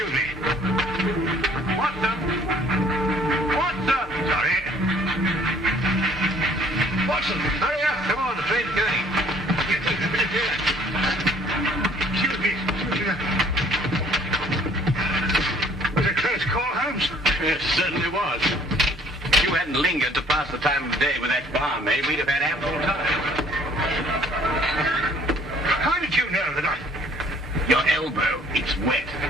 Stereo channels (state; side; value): normal; both; correlation 0.57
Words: me. What the? Sorry. Watson, hurry up. Come on, the train's going. Excuse me. Was it a close call, Holmes? Yes, certainly was. If you hadn't lingered to pass the time of day with that barmaid, we'd have had ample time. How did you know that Your elbow, it's wet.